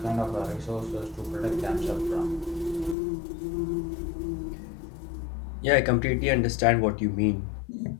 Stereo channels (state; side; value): drops out; right; at 3.0 s